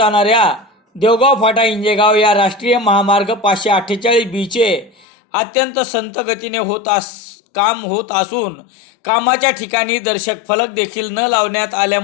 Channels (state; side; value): drops out; right; at 5.1 s